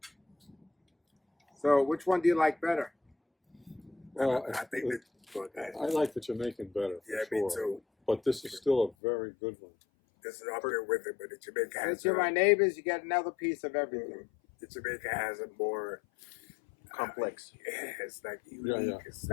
So, which one do you like better? Well, I think that. But I like the Jamaican better. For yeah, sure. me too. But this is still a very good one. This is up there with it, but the Jamaica has Since you're my neighbors, you get another piece of everything. the Jamaica has a more Complex. yeah, it's like unique. yeah. It's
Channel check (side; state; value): right; drops out; at 9.0 s